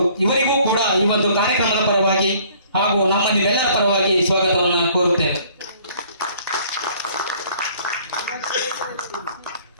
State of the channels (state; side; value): inverted; both; correlation -0.57